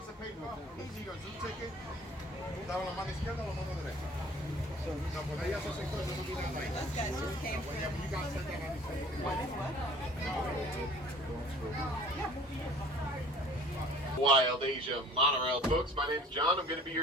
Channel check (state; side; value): normal; both; correlation 0.50